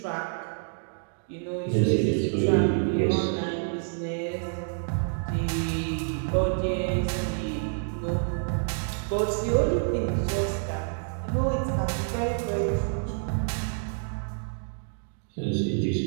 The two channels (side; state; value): left; silent; digital silence